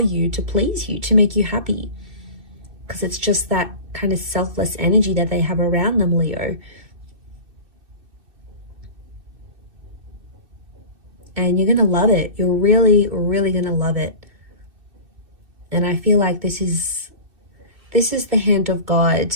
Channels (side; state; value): left; late; 2.6 ms